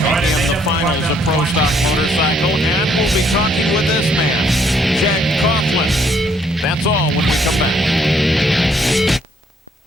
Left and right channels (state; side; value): normal; both; correlation 0.68